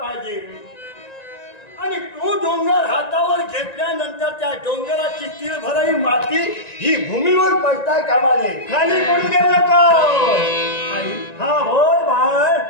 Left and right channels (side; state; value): right; late; 1.9 ms